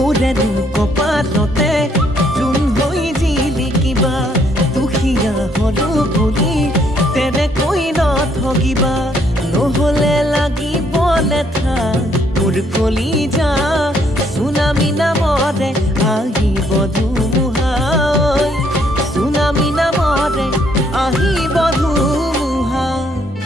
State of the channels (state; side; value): normal; both; correlation 0.69